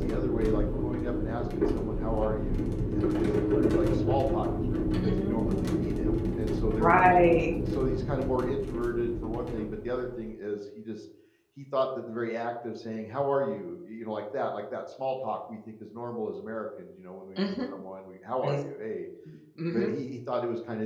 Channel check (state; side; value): identical; both; correlation 1.00